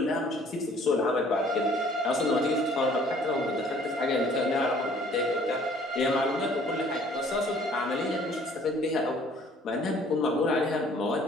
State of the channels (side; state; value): both; normal; correlation 0.57